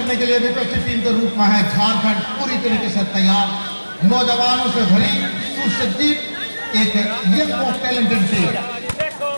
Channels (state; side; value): inverted; both; correlation -1.00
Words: के लिए विपक्षी टीम के रूप में है झारखंड पूरी तरीके से तैयार, नौजवानों से भरी सुसज्जित एक यंग टैलेंटेड टीम